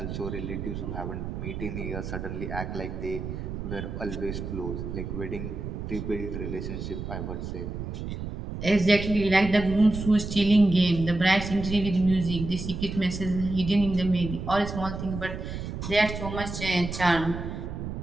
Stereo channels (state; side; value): noise; right; rumble, 6 dB below the sound